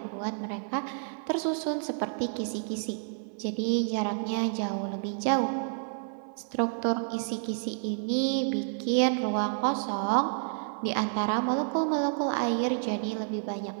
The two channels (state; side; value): silent; left; 58 dB below the other